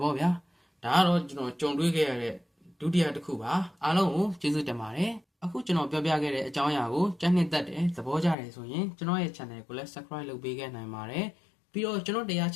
ဗောဗျာဒါကတော့ကျွန်တော်ကြုံတွေ့ခဲ့ရတဲ့ဒုတိယတစ်ခုပါအားလုံးကိုကျေးဇူးတင်ပါတယ်အခုကျွန်တော်ပြောပြခဲ့တဲ့အကြောင်းအရာကိုကြိုက်နှစ်သက်တယ်သဘောကျတယ်ဆိုရင်ကျွန်တော်ရဲ့ channel ကိုလည်း subscribe လုပ်ပေးခဲ့နိုင်ပါတယ်ပြီးတော့ကျွန်တော်တရား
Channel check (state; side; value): drops out; right; at 8.3 s